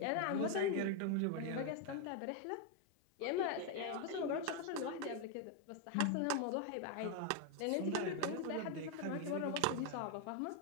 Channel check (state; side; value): different; both; correlation 0.00